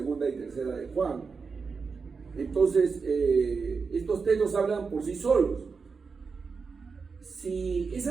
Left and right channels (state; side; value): quieter; left; 5.0 dB